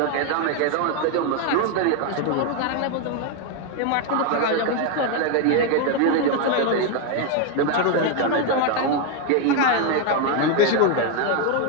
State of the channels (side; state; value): both; different; correlation 0.01